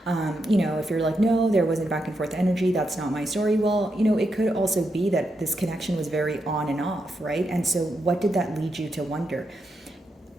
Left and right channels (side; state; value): both; normal; correlation 0.84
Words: If you're like, no, there wasn't back and forth energy, that's not my story. Well, it could also be that this connection was very on and off, right? And so what did that lead you to wonder?